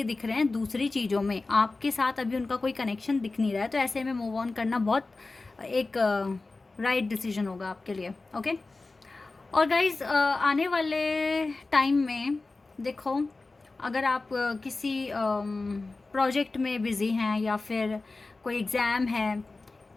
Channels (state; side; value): quieter; right; 3.5 dB